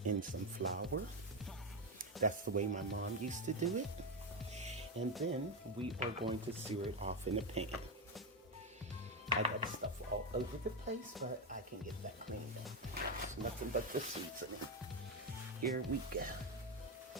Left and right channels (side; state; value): both; normal; correlation 0.10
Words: in some flour. That's the way my mom used to do it. And then we are going to sear it off in a pan. I got stuff all over the place, but I can get that cleaned up. It's nothing but the seasoning. Here we go.